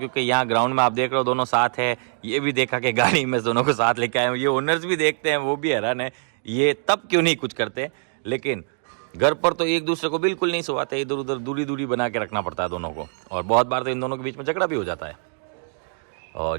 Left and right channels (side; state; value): left; silent; digital silence